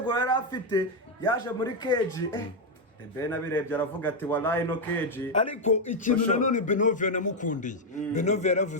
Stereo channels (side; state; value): both; normal; correlation 0.03